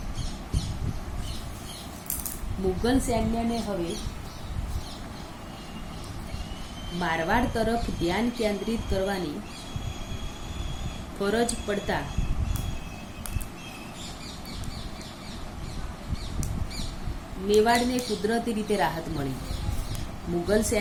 મુગલ સૈન્યને હવે મારવાડ તરફ ધ્યાન કેન્દ્રિત કરવાની ફરજ પડતા મેવાડને કુદરતી રીતે રાહત મળી. મુગલ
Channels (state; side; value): identical; both; correlation 1.00